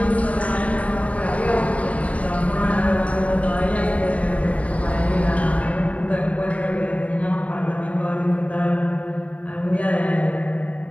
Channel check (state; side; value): late; right; 0.067 ms